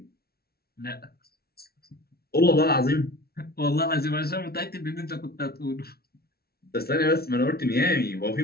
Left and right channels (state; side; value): late; right; 0.45 ms